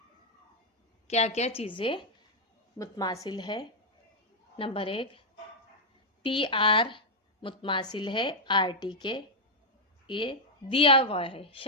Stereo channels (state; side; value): normal; both; correlation -0.02